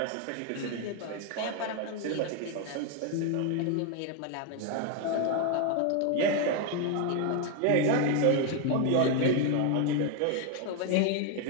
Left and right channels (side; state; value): both; different; correlation 0.01